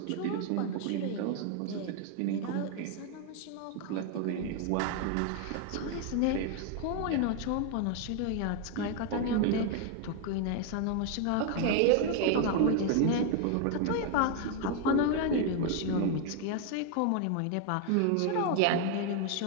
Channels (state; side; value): different; both; correlation 0.01